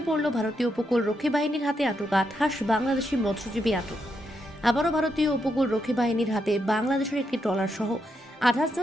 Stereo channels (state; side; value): normal; both; correlation 0.81